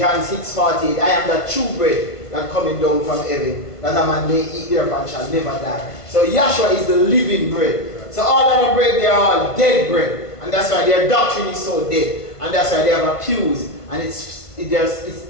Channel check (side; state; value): right; late; 1.5 ms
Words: 6:48, I am that true bread that coming down from heaven. that a man may eat thereof and shall never die. So Yahshua is the living bread. So all other bread, they are all dead bread. And that's why their doctrine is so dead. And that's why they have abused. And it